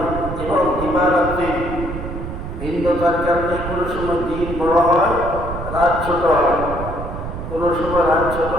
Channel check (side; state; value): right; noise; rumble, 7 dB below the sound